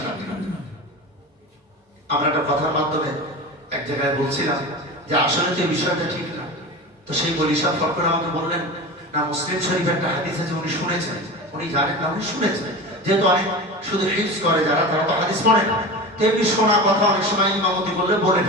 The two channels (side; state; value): both; normal; correlation 0.29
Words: না। আমরা একটা কথার মাধ্যমে এক জায়গায় বলছিলাম যে আসলে যে বিষয়টা ঠিক না, তো সেই বলি সাহেব ফট করে আমাকে বললেন না, মুসলিম শরীফের একটা হাদিস আছে, উনি শুনেছেন, উনি জানেন না, উনি শুনেছেন, যেহেতু অনেক শুধু হিফজ করে যারা, তারা তো হাদিস পড়ে না, তেমনি শোনা কথা অনেক সময় ইমামতি বললে বলে